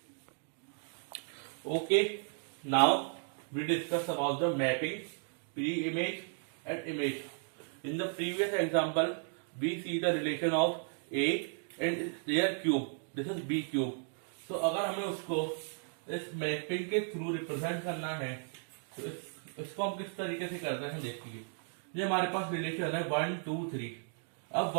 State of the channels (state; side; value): silent; left; 54 dB below the other